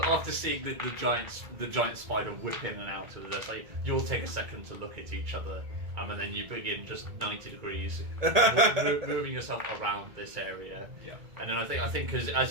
seeing the giant spider whip in and out of this, like, you'll take a second to look at each other, and then you begin just 90 degrees, moving yourself around this area. Yeah. And then I think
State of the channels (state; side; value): late; left; 1.8 ms